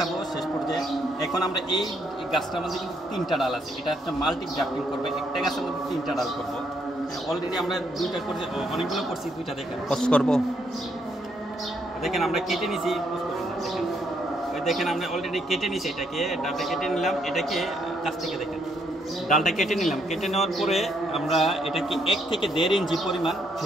শেষ পর্যায়ে। এখন আমরা এই গাছটার মধ্যে কিন্তু 3টা ডাল আছে। এটা একটা মাল্টি গ্রাফটিং করবে, একটা গাছের মধ্যে 3টা ডাল করবো। অলরেডি আমরা 2টা করছি, অনেকগুলো করছি, 2টা দেখেন পোস্ট করবো। দেখেন আমরা কেটে নিছি, পোস্ট করি না, দেখেন ওই দেখেন আমরা অলরেডি কেটে নিছি। এটাকে ডালটা কেটে নিলাম, এটাকে কাছ থেকে দেখেন ডালটা কেটে নিলাম। কেটে নেওয়ার পরে আমরা এটাকে 1 থেকে 1.5 ইঞ্চি পরিমাণ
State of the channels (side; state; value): both; normal; correlation 0.73